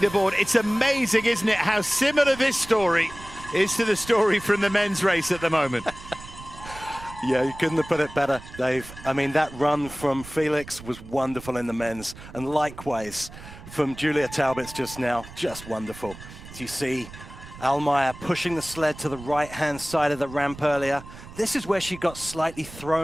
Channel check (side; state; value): right; noise; rumble, 16 dB below the sound